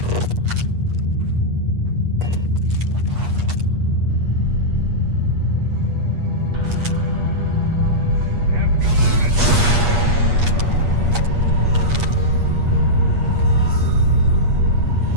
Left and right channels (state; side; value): late; left; 8.4 ms